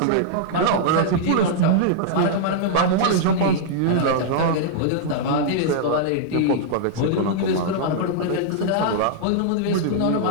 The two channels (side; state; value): both; different; correlation -0.02